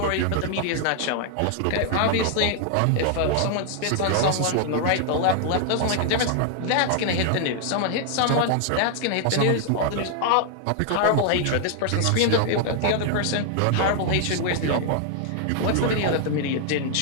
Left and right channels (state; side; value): different; both; correlation 0.00